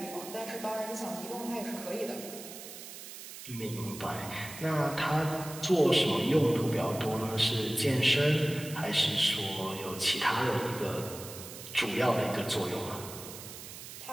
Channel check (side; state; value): right; noise; hiss, 12 dB below the sound